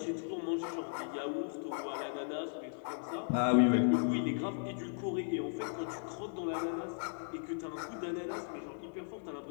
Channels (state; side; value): silent; right; digital silence